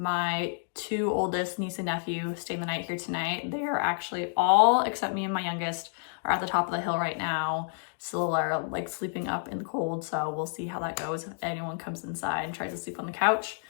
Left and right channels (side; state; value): right; silent; digital silence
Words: 2 oldest niece and nephew staying the night here tonight. They are actually all, except me and my youngest, are at the top of the hill right now. Still are like sleeping up in the cold, so we'll see how that goes if anyone comes inside and tries to sleep on the couch.